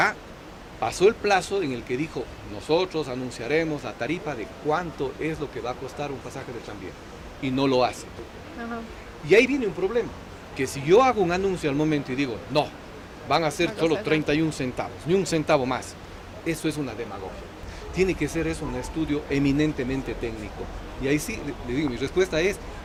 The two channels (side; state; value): both; identical; correlation 1.00